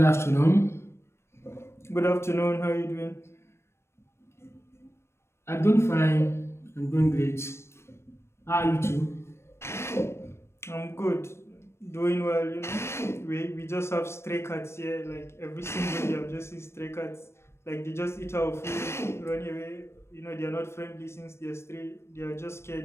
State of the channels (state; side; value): late; right; 0.13 ms